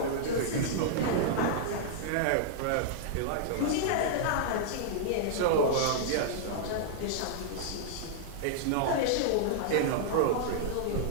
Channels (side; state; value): both; different; correlation -0.01